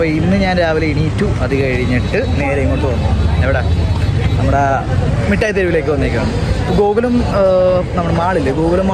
ഇന്ന് ഞാൻ രാവിലെ എണീറ്റു. അത് കഴിഞ്ഞിട്ട് നേരെ ഇങ്ങോട്ട് വന്നു. എവിടെ? നമ്മുടെ മിഠായി തെരുവിലേക്ക് വന്നേക്കാണ്. ഗോകുലം നമ്മുടെ മാളില്ലേ, ഗോകുലം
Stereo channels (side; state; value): both; identical; correlation 1.00